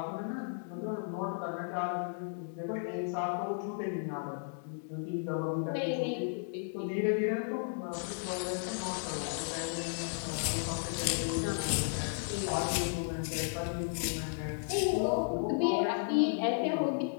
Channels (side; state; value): right; silent; digital silence